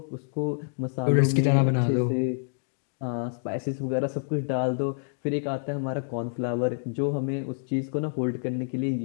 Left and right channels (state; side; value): silent; right; digital silence